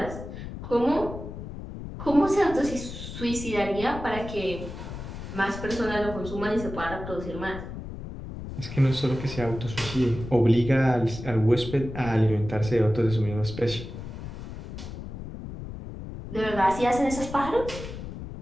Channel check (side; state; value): left; noise; rumble, 10 dB below the sound